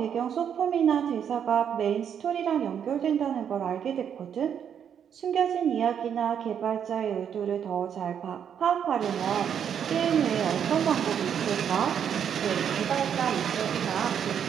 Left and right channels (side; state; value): left; quieter; 8.4 dB